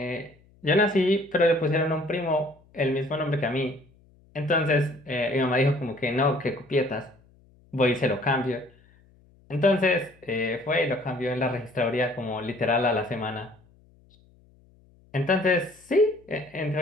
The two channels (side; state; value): left; noise; hum, 30 dB below the sound